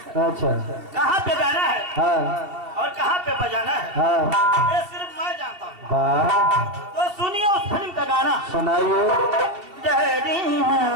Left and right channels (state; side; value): late; left; 2.7 ms